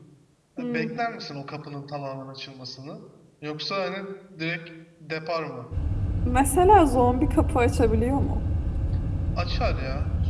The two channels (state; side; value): identical; both; correlation 1.00